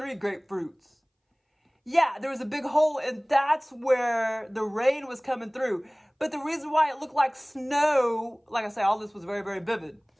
grapefruits. Yeah, there was a big hole, and that's where the rain was coming through. But the reason why it looked like snow, like I say, all this was very, very vivid.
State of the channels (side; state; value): both; identical; correlation 1.00